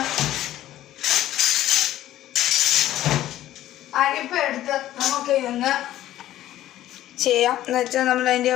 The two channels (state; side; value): quieter; right; 13.6 dB